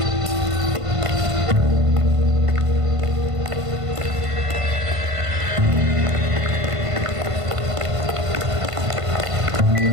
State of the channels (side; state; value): left; late; 1.5 ms